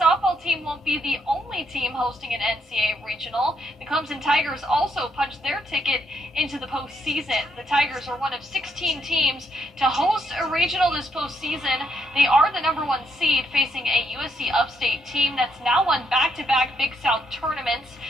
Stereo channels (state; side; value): normal; both; correlation 0.75